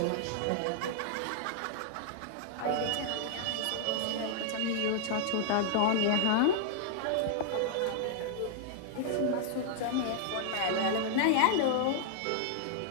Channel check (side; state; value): both; different; correlation -0.01